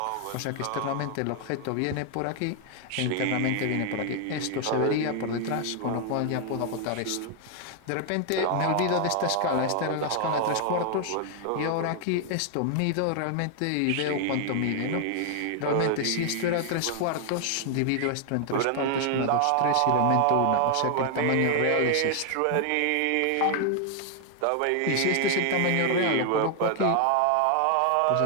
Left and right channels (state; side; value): different; both; correlation 0.00